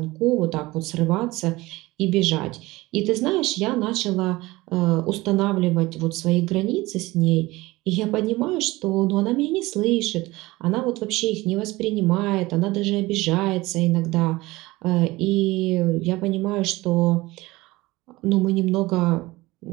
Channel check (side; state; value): left; quieter; 20.3 dB